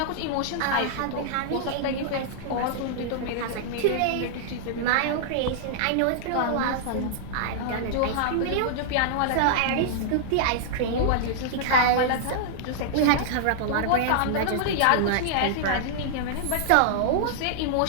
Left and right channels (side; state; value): both; different; correlation -0.01